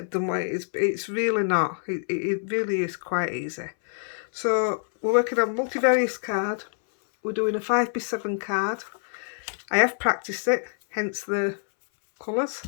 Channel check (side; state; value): right; silent; 61 dB below the other